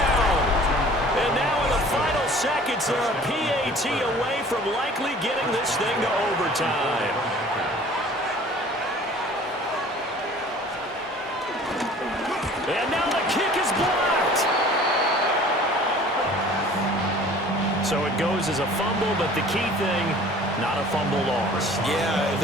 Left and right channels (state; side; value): normal; both; correlation 0.48